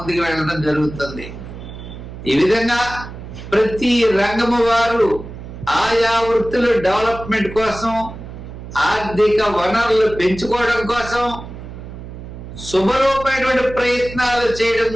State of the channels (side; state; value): right; noise; hum, 12 dB below the sound